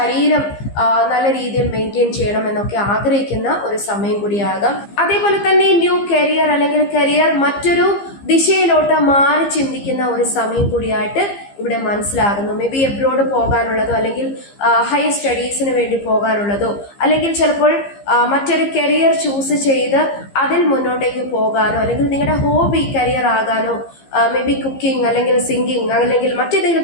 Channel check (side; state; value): right; late; 15 ms